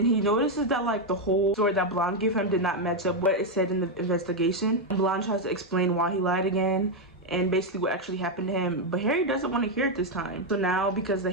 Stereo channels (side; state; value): both; normal; correlation 0.03